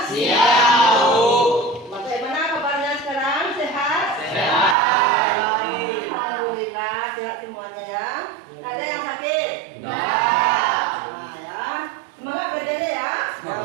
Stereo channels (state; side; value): drops out; left; at 4.8 s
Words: Siang, Bu. Bagaimana kabarnya sekarang? Sehat? Sehat. Alhamdulillah, sehat semuanya ya. Nggak ada yang sakit? Nah, Nah, ya. Semangat belajarnya ya.